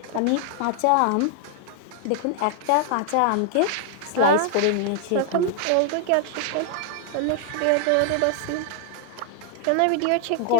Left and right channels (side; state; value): both; different; correlation 0.00